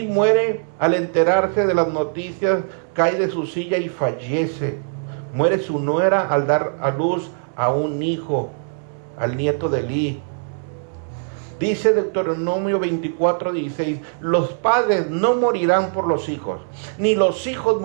muere al enterarse de las noticias, cae de su silla y fallece. Muere su nuera al dar a luz a un hijo, al nieto de Elí. Dice Deuteronomio 24:16, los padres no morirán por los hijos, ni los hijos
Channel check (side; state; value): left; silent; digital silence